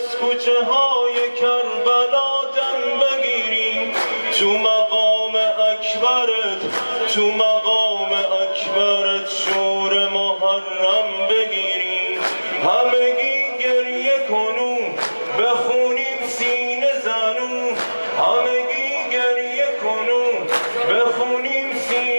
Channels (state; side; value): inverted; both; correlation -1.00